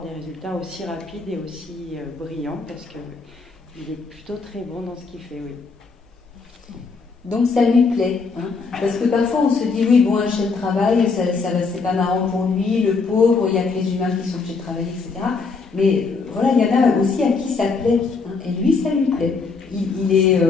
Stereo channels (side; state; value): right; quieter; 4.5 dB